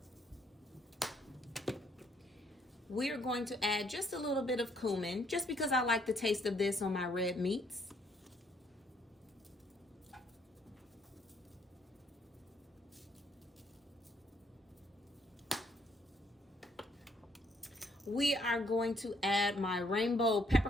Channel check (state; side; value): normal; both; correlation 0.69